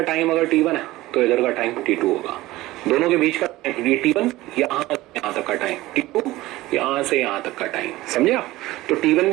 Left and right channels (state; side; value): quieter; left; 17.9 dB